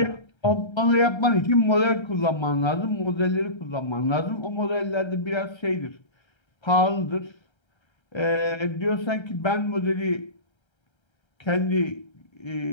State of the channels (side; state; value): right; late; 1.3 ms